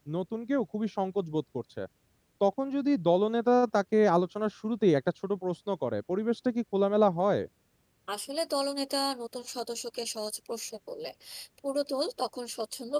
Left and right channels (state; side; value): identical; both; correlation 1.00